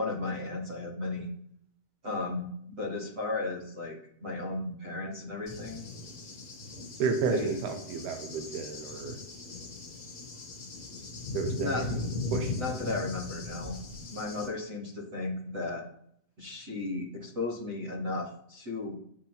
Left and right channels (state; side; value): late; left; 7.9 ms